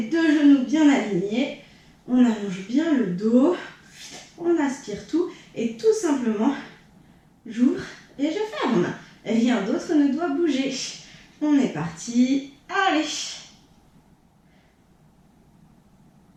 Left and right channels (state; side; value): identical; both; correlation 1.00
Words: deux genoux bien alignés, on allonge bien le dos, on aspire tout et tout simplement, j'ouvre et je ferme. Rien d'autre ne doit bouger. On est parti, allez.